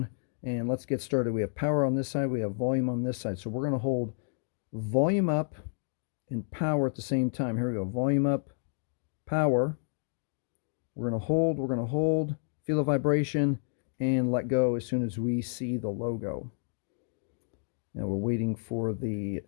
And let's get started. We have power on this side, we have volume on this side. So we're going to hold volume up and power at the same time. Here we go, volume up, power. We're going to hold, feel a vibration, and let go as soon as we see the logo. Now we're waiting for the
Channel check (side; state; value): right; silent; digital silence